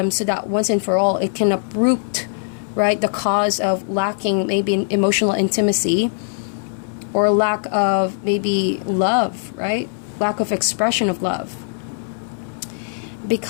so that once and for all it can uproot, right, the cause of lacking maybe emotional intimacy or lack of maybe love, right? Lack of expression of love.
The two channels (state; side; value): silent; right; 65 dB below the other